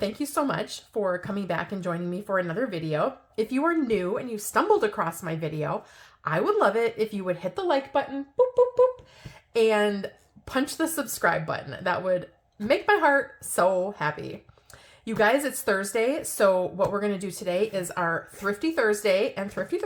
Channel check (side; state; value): both; identical; correlation 1.00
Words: you so much for coming back and joining me for another video. If you are new and you stumbled across my video, I would love it if you would hit the like button, boop, boop, boop, and punch the subscribe button. That would make my heart so happy. You guys, it's Thursday, so what we're going to do today is our Thrifty Thursday, and Thrifty